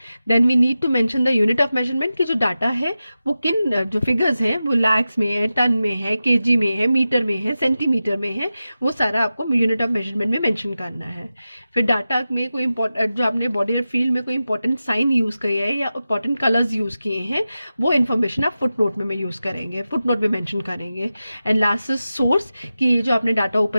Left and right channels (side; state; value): both; inverted; correlation -0.94